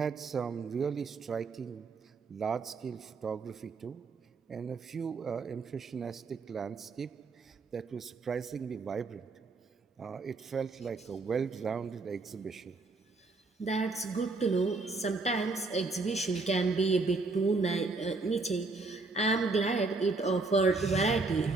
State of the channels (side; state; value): left; quieter; 3.8 dB